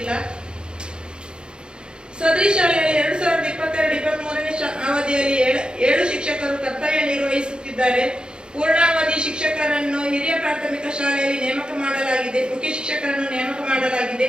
ಸದರಿ ಶಾಲೆಯಲ್ಲಿ 2022-23ನೇ ಅವಧಿಯಲ್ಲಿ 7 ಶಿಕ್ಷಕರು ಕರ್ತವ್ಯ ನಿರ್ವಹಿಸುತ್ತಿದ್ದಾರೆ. ಪೂರ್ಣಾವಧಿ ಶಿಕ್ಷಕರನ್ನು ಹಿರಿಯ ಪ್ರಾಥಮಿಕ ಶಾಲೆಯಲ್ಲಿ ನೇಮಕ ಮಾಡಲಾಗಿದೆ. ಮುಖ್ಯ ಶಿಕ್ಷಕರನ್ನು ನೇಮಕ ಮಾಡಲಾಗಿದೆ.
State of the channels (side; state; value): left; late; 0.050 ms